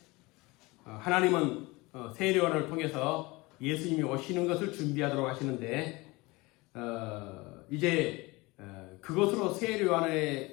하나님은 세례 요한을 통해서 예수님이 오시는 것을 준비하도록 하시는데 이제 그것으로 세례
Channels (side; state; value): right; quieter; 23.2 dB